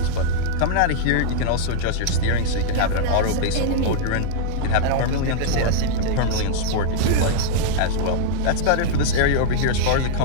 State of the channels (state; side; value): different; both; correlation -0.01